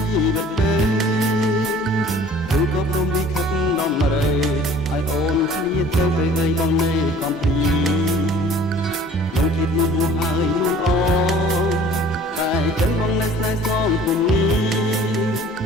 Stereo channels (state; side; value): normal; both; correlation 0.50